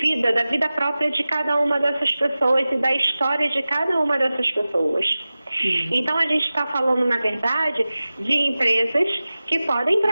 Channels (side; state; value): both; inverted; correlation -0.97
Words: da vida própria de cada uma dessas pessoas e da história de cada uma dessas pessoas. Então a gente está falando, na verdade, de empresas que podem